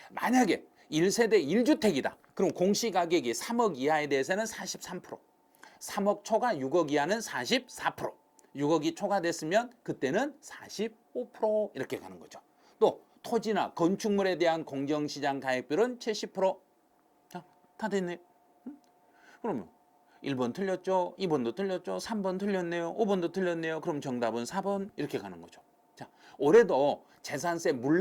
만약에 1세대 1주택이다. 그럼 공시가격이 3억 이하에 대해서는 43%. 3억 초과 6억 이하는 44%. 6억이 초과됐으면 그때는 45% 이렇게 가는 거죠. 또 토지나 건축물에 대한 공정시장 가액비율은 70%. 자, 다 됐네. 그러면 1번 틀렸죠. 2번도 틀렸죠. 3번 틀렸네요. 5번도 틀렸네요. 그럼 정답은 4번 이렇게 가는 거죠. 자, 올해도 재산세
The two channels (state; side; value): identical; both; correlation 1.00